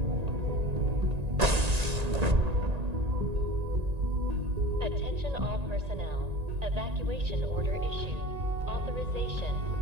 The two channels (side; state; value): left; late; 1.9 ms